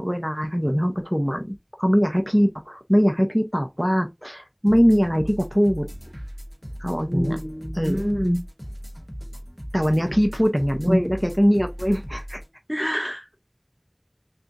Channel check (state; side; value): identical; both; correlation 1.00